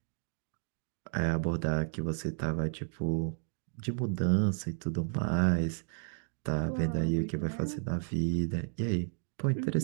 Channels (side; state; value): left; silent; 56 dB below the other